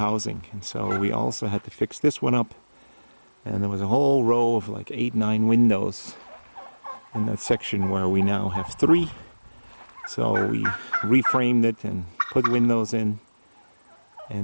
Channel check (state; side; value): inverted; both; correlation -1.00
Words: And so we also had to fix this one up, and there was a whole row of like 8-9 windows in that section where we now have 3. So we reframed it and put windows in,